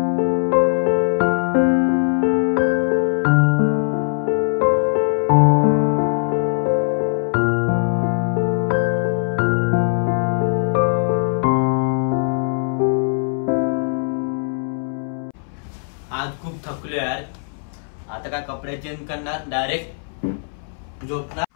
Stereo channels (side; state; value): right; silent; 63 dB below the other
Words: आज खूप थकलो यार. आता काय कपडे चेंज करणार, डायरेक्ट झोपणार.